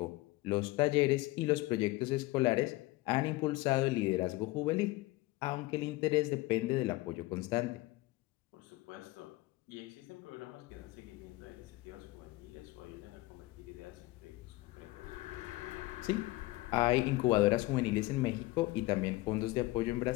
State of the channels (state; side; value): quieter; right; 19.9 dB